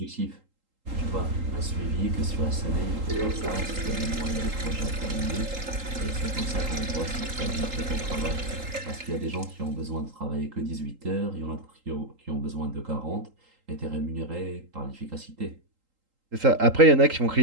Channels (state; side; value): late; left; 3.8 ms